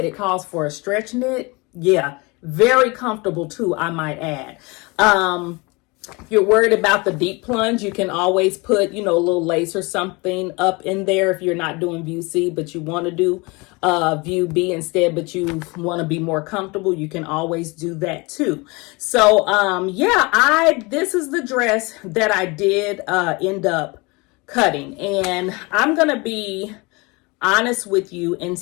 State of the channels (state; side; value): quieter; right; 26.5 dB